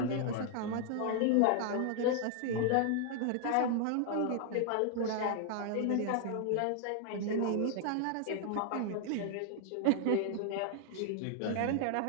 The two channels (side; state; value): both; different; correlation 0.00